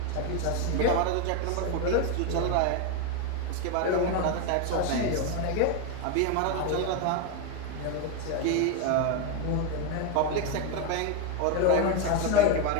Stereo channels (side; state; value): both; different; correlation 0.02